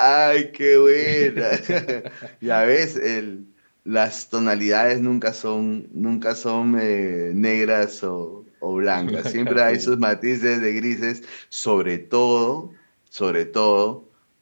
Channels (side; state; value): both; inverted; correlation -1.00